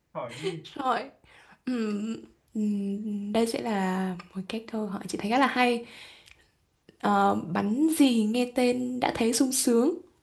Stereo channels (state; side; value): identical; both; correlation 1.00